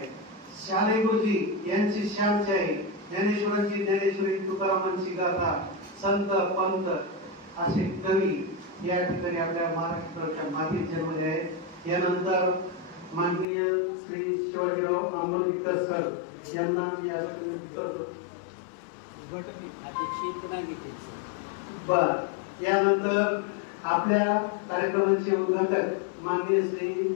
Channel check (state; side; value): drops out; right; at 13.5 s